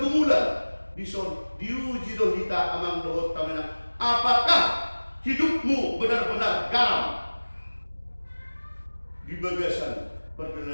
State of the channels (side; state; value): both; inverted; correlation -1.00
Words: Diuji do hita amang dohot tamena. Apakah hidupmu benar-benar garam di bagasan